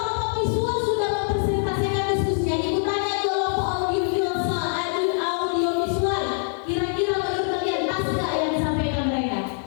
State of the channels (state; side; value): silent; right; 59 dB below the other